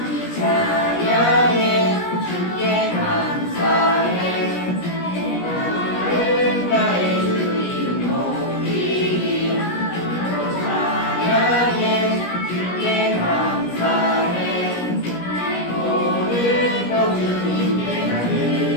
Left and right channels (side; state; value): right; late; 17 ms